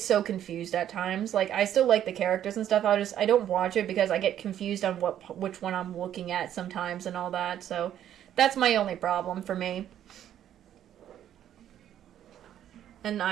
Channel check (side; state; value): left; quieter; 10.8 dB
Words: confused at times. Like I still like the characters and stuff. I don't watch it because I get confused on which one I'm looking at sometimes and all that. So that's my only problem for me. And